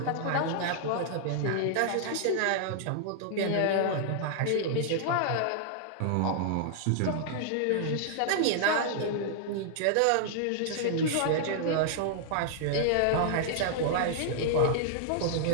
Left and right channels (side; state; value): both; different; correlation -0.01